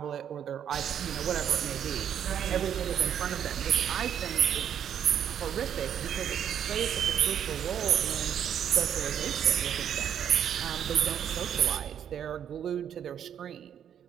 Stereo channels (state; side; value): quieter; left; 9.2 dB